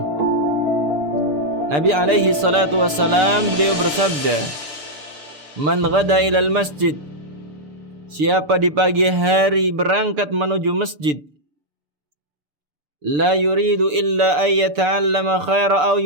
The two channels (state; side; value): late; left; 6.8 ms